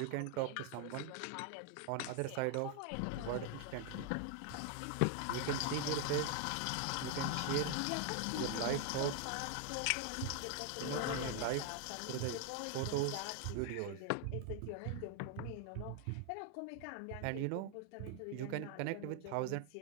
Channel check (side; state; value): both; different; correlation 0.00